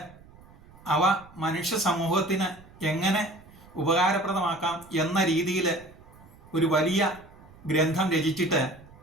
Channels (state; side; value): noise; right; rumble, 23 dB below the sound